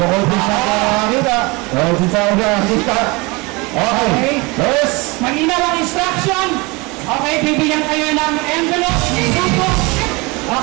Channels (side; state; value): left; quieter; 25.8 dB